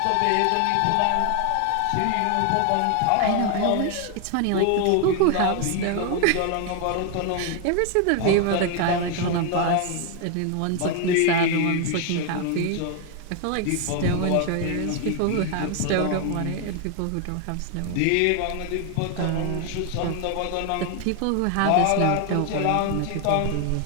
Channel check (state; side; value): different; both; correlation 0.01